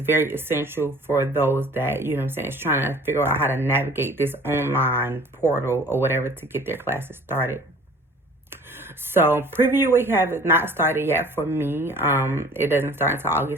very essential for those that, is trying to figure out how to navigate this online portal or whatever to get their classes started. So preview week has not started yet for me. It doesn't start until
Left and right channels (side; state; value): both; normal; correlation 0.49